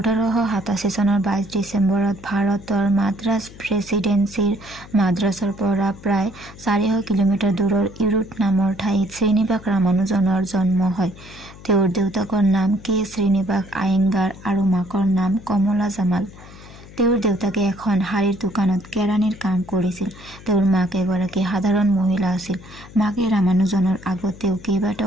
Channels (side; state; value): left; noise; hum, 19 dB below the sound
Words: চনৰ 22 ডিচেম্বৰত ভাৰতৰ মাদ্ৰাজ প্ৰেছিডেন্সিৰ মাদ্ৰাজৰ পৰা প্ৰায় 400 কিলোমিটাৰ দূৰৰ ইৰোড নামৰ ঠাইত শ্ৰীনিবাস ৰামানুজনৰ জন্ম হয়। তেওঁৰ দেউতাকৰ নাম কে শ্ৰীনিবাস আয়েংগাৰ আৰু মাকৰ নাম কমলা জামাল। তেওঁৰ দেউতাকে এখন শাড়ীৰ দোকানত কেৰাণীৰ কাম কৰিছিল। তেওঁৰ মাক এগৰাকী সাধাৰণ মহিলা আছিল। মাকে ৰামানুজনৰ আগতেও